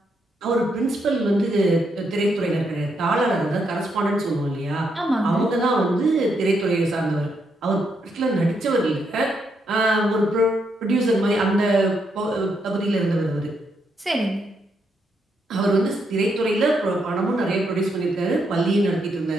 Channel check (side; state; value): both; normal; correlation 0.78